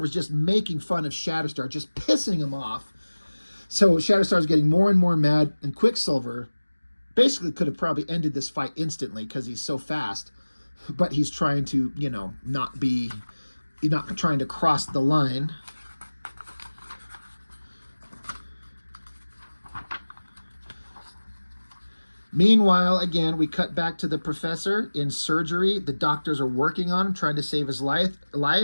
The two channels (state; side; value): inverted; both; correlation -1.00